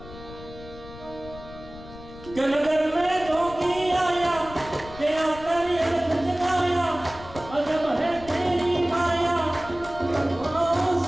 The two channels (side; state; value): left; noise; rumble, 16 dB below the sound